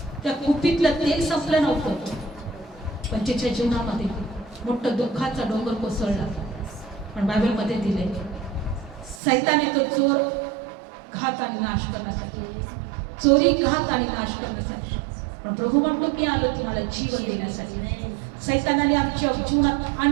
त्या कुपीतलं तेल संपलं नव्हतं, पण तिच्या जीवनामध्ये मोठं दुःखाचा डोंगर कोसळला. पण बायबलमध्ये दिले सैताने तो चोर घात आणि नाश करण्यासाठी, चोरी घात आणि नाश करण्यासाठी, पण प्रभू म्हणतो की आलो तुम्हाला जीवन देण्यासाठी. सैतानाने आमच्या जीवनात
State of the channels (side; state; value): left; drops out; at 9.2 s